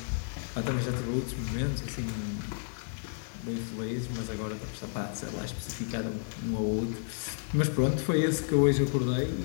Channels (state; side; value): silent; right; digital silence